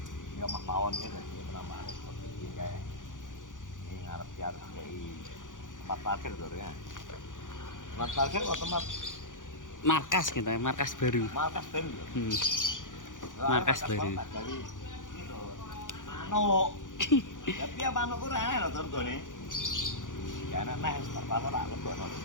Ya mah pawon ya dadi penambahan seperti iki kae. Ini ngarep harus kayak 4 parkir to ya. 4 parkir otomatis Markas gitu, markas baru. markas baru. Markas baru. Dari itu manuk. Tapi ya manuk ku rene lho turgone. Ya enak nek terpaksa tak lebokno.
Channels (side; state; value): right; late; 0.88 ms